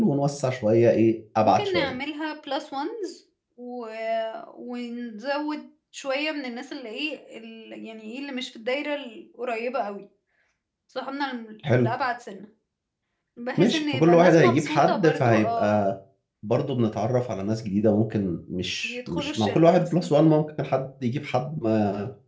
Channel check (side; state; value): both; identical; correlation 1.00